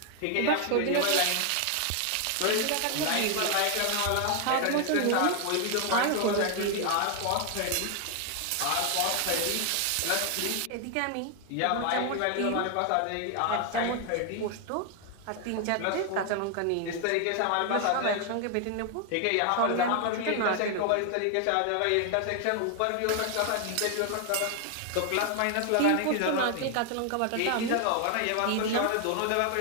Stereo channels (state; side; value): different; both; correlation 0.00